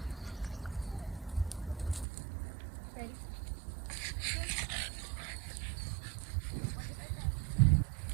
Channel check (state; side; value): drops out; left; at 2.1 s